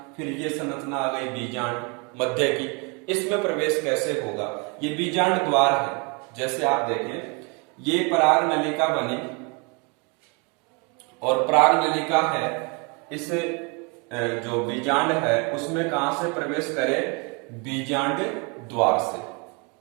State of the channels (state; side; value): quieter; left; 32.2 dB